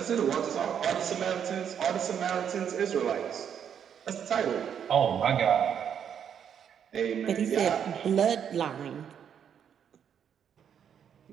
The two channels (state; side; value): quieter; left; 8.3 dB